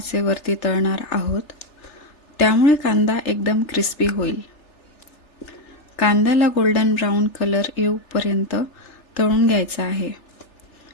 तळणार आहोत, त्यामुळे कांदा एकदम क्रिस्पी होईल. कांद्याला गोल्डन ब्राऊन कलर येऊपर्यंत तळून घ्यायचा आहे.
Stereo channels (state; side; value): late; right; 3.4 ms